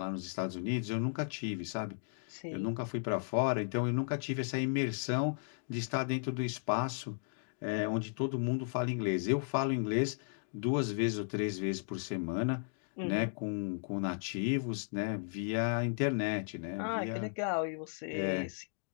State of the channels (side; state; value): right; silent; digital silence